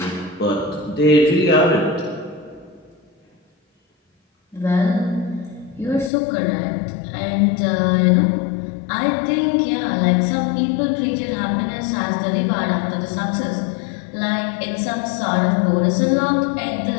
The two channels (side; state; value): right; drops out; at 6.1 s